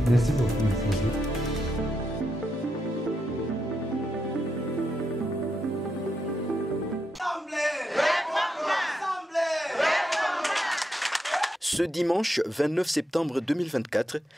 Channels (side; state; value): both; normal; correlation 0.83